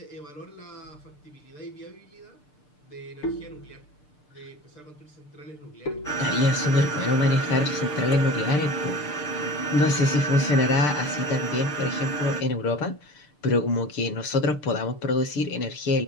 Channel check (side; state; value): right; late; 6.7 ms